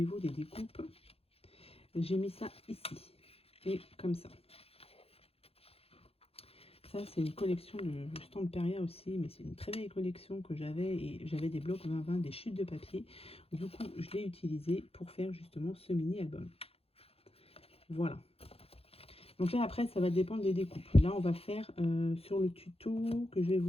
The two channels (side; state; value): right; late; 0.28 ms